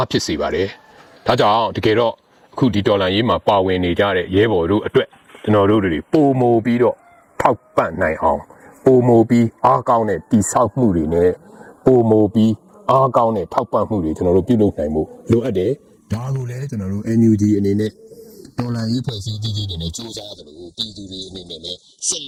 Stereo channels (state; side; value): identical; both; correlation 1.00